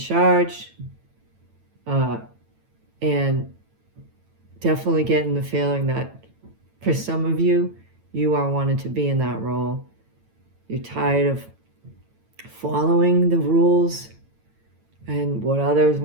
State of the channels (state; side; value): late; left; 9.0 ms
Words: and definitely getting the feeling that for some of you, you are wanting to be in that role. You're tired of following the rules and what others